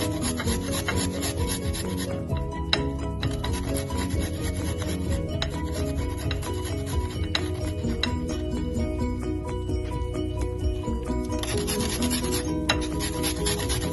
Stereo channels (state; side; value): identical; both; correlation 1.00